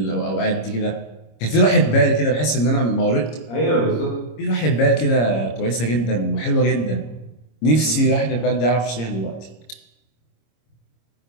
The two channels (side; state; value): right; late; 26 ms